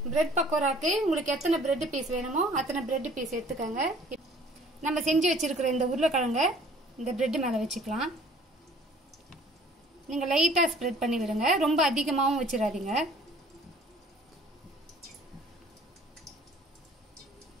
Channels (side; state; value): both; normal; correlation 0.53